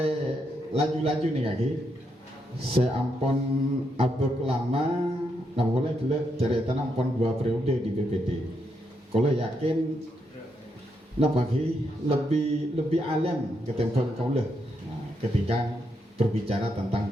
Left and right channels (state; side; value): normal; both; correlation 0.80